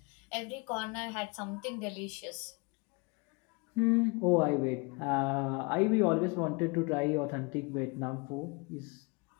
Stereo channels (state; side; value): quieter; right; 29.6 dB